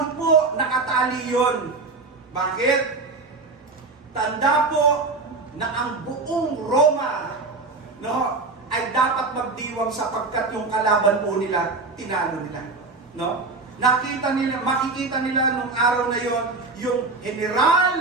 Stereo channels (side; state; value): left; quieter; 3.7 dB